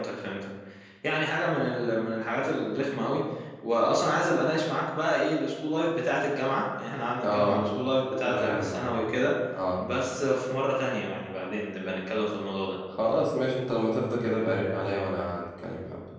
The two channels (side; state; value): both; identical; correlation 1.00